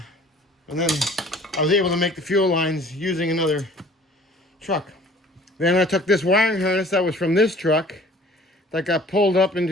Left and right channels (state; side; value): normal; both; correlation 0.50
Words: and then I was able to make the fuel lines using another truck. Then I took this wiring harness that was from this truck that got pulled up